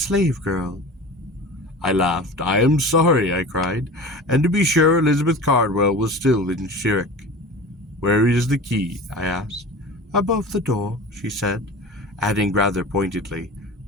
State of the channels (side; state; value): both; normal; correlation 0.35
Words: girl." I laughed. "I am sorry," I cried, and to be sure Elizabeth Cardwell was still in shirk. "Where is the key?" I asked. "Above the door," she said, adding rather pointedly,